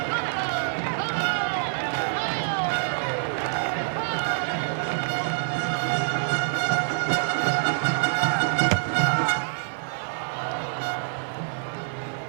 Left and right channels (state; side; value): silent; left; digital silence